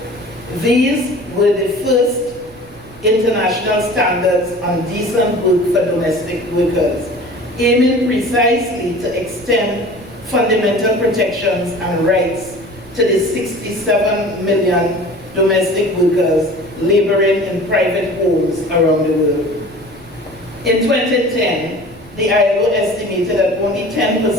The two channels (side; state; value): right; noise; rumble, 23 dB below the sound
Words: These were the first international standards on decent work for domestic workers, aiming precisely to extend fundamental protections and rights to the 67 million domestic workers laboring in private homes around the world. In 2010, the ILO estimated that only